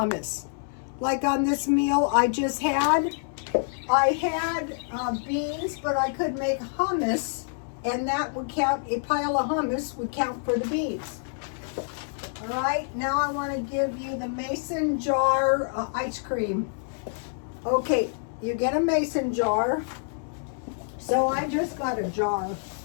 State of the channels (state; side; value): silent; right; 60 dB below the other